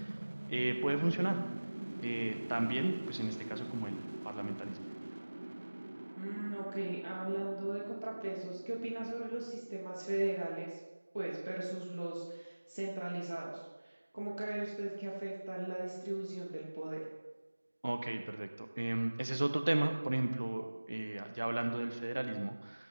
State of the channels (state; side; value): inverted; both; correlation -1.00